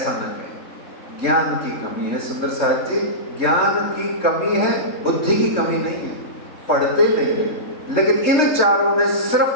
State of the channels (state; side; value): late; right; 3.3 ms